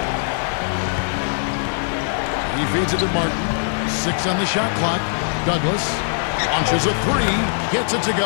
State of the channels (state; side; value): silent; right; digital silence